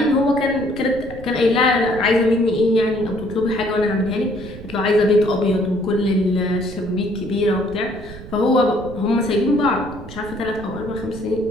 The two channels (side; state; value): right; noise; rumble, 15 dB below the sound